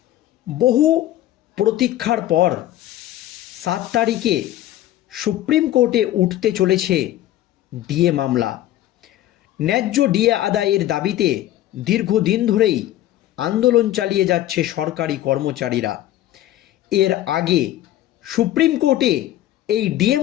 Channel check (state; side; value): quieter; right; 13.7 dB